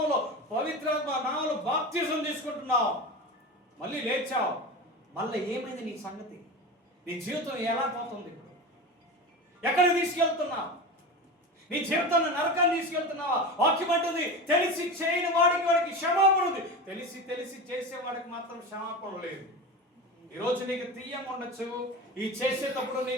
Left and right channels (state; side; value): normal; both; correlation 0.27